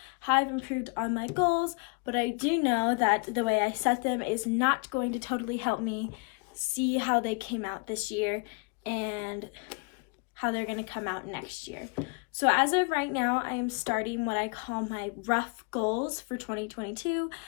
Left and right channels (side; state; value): right; quieter; 34.4 dB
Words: how I've improved on my goals, but I do know that the way I set them is not going to totally help me see how they came out this year and how they're going to come out next year. So as of right now, I am starting what I call my rough goals for 2022.